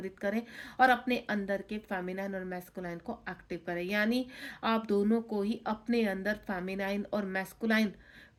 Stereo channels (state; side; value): identical; both; correlation 1.00